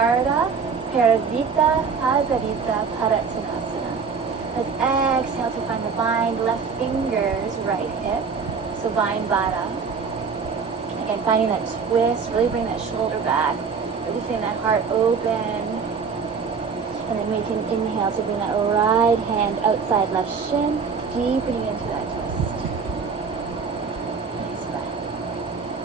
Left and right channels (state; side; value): quieter; left; 5.6 dB